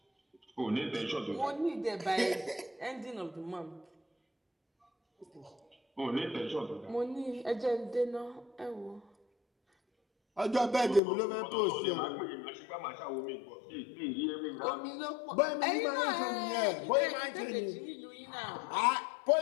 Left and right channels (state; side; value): drops out; right; at 11.0 s